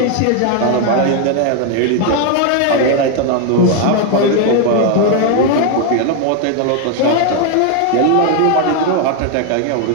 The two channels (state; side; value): different; both; correlation 0.01